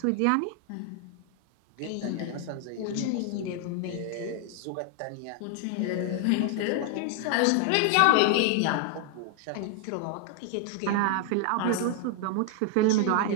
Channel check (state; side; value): different; both; correlation 0.00